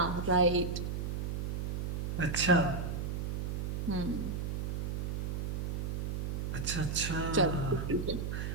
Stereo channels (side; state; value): right; noise; hum, 1 dB below the sound